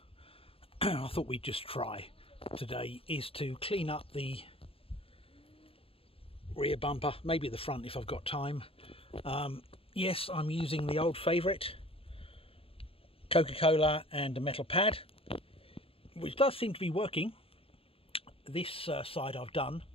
I thought we'd just try today is to clean up the rear bumper, maybe the front if I've got time. Yes, I'm using the old favourite, Coca-Cola and a metal pad, which does seem to be working. This side I've done,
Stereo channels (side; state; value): right; late; 0.27 ms